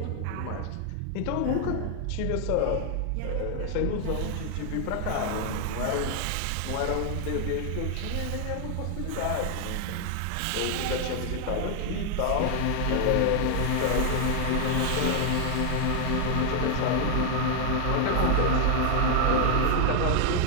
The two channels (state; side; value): different; both; correlation 0.00